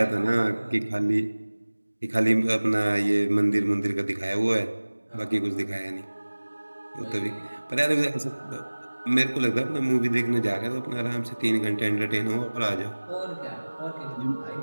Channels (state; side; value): inverted; both; correlation -1.00